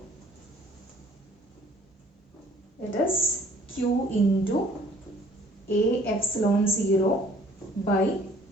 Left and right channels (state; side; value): normal; both; correlation 0.56